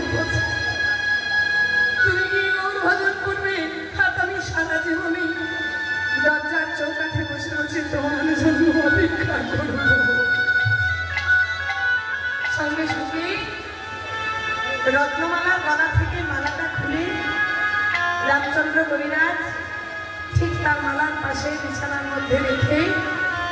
পথে। তুমি কি গৌর ভজন করবে, আর আমি সারা জীবনে দরজার চৌকাঠে বসে বসে তোমার জন্য অপেক্ষা করব। সঙ্গে সঙ্গে রত্নমালার গলা থেকে মালাটা খুলে রামচন্দ্র কবিরাজ ঠিক তার মালার পাশে বিছানার মধ্যে রেখে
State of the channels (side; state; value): both; identical; correlation 1.00